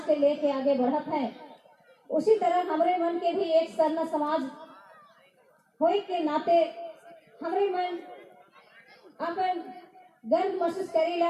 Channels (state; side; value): identical; both; correlation 1.00